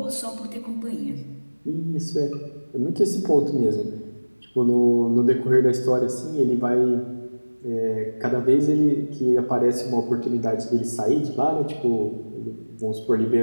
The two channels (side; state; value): both; inverted; correlation -1.00